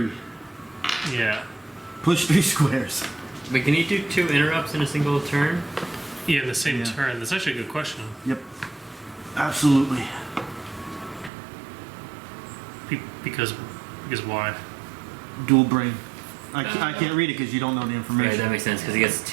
Yeah. Push 3 squares. Wait, can you do 2 interrupts in a single turn? Yeah, in the same Yeah. turn. That's actually a good question. Yep. Absolutely. Because why? Dual brain. I can't read it because you don't know the Right, information. that makes sense because he gets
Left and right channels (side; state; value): left; drops out; at 11.3 s